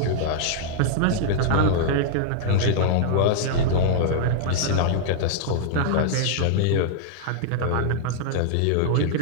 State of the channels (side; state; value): both; different; correlation -0.01